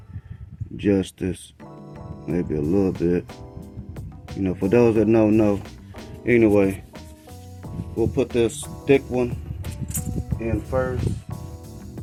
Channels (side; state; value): both; identical; correlation 1.00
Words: justice, maybe a little bit. You know, for those that don't know, anyway, we'll put this thick one in first,